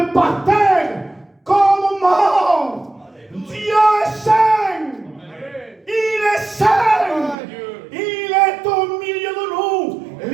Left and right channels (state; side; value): drops out; left; at 7.4 s